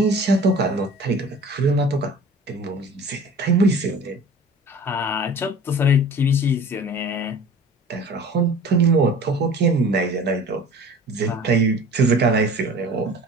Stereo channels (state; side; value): normal; both; correlation 0.43